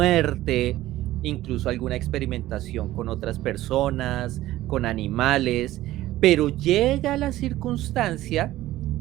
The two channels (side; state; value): left; quieter; 15.4 dB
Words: incluso alguna experimentación con otras personas, con animales, pero llega la circunstancia